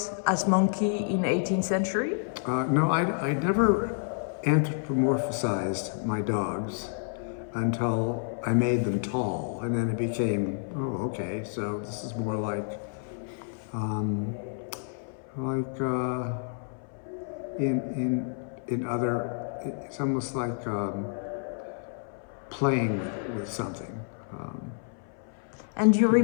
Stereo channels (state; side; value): silent; right; 58 dB below the other